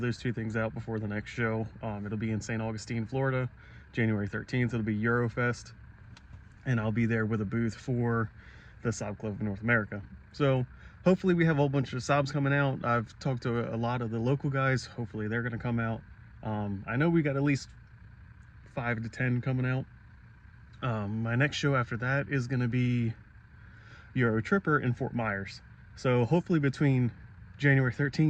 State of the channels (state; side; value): identical; both; correlation 1.00